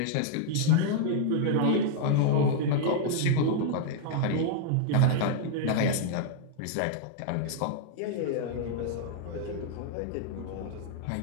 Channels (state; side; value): different; both; correlation -0.01